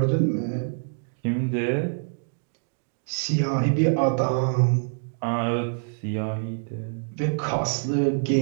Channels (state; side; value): silent; left; digital silence